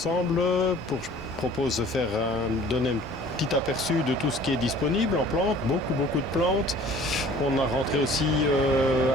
Je propose de donner un petit aperçu de tout ce qui est disponible en plantes, beaucoup de plantes. On a rentré aussi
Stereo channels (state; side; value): normal; both; correlation 0.50